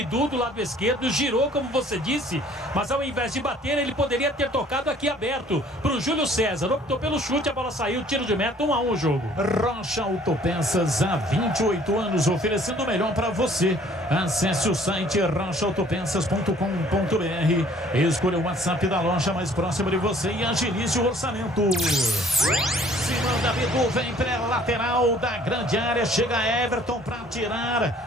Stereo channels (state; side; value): normal; both; correlation 0.56